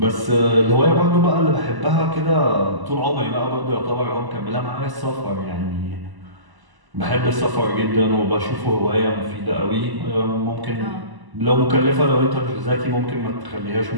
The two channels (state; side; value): late; left; 1.0 ms